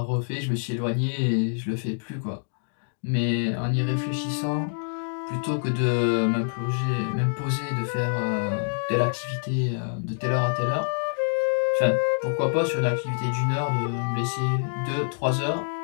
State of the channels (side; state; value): right; silent; digital silence